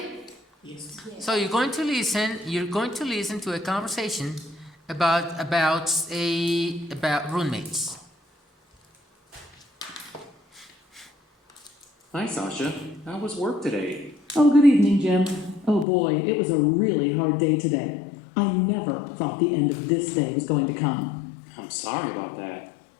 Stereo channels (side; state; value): right; drops out; at 15.9 s